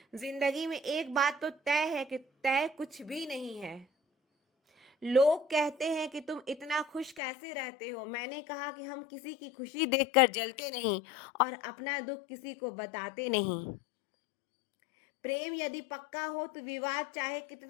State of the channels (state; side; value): drops out; right; at 7.2 s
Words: जिंदगी में एक बात तो तय है कि तय कुछ भी नहीं है। लोग कहते हैं कि तुम इतना खुश कैसे रहते हो। मैंने कहा कि हम किसी की खुशी देखकर जलते नहीं और अपना दुख किसी को बताते नहीं। प्रेम यदि पक्का हो तो विवाद चाहे